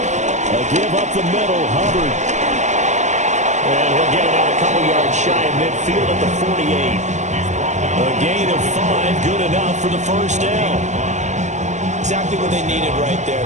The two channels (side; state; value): left; late; 0.34 ms